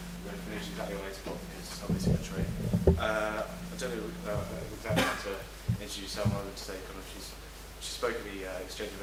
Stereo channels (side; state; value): both; identical; correlation 1.00